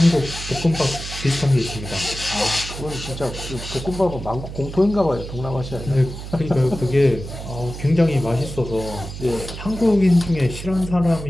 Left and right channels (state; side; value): noise; right; hum, 10 dB below the sound